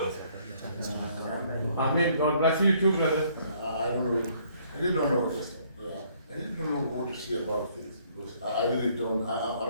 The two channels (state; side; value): inverted; both; correlation -0.64